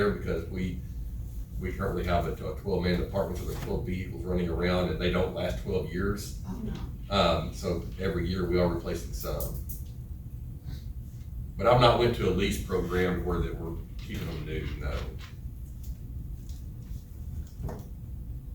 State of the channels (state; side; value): identical; both; correlation 1.00